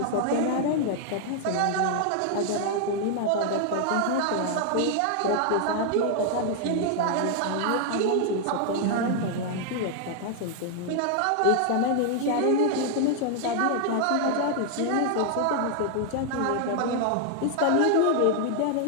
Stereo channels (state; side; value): different; both; correlation 0.00